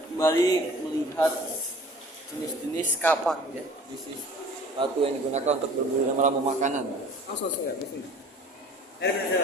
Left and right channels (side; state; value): both; normal; correlation 0.47